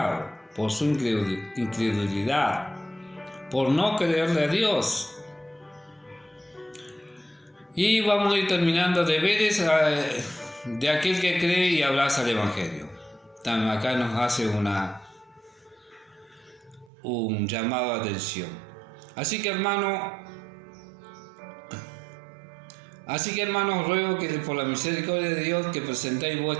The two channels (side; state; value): left; drops out; at 16.9 s